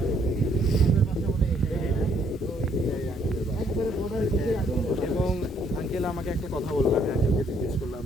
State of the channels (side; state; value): both; normal; correlation 0.67